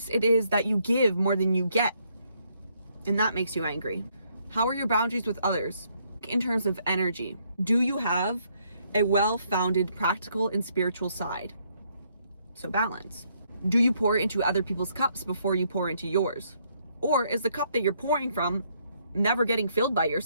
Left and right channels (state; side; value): inverted; both; correlation -0.71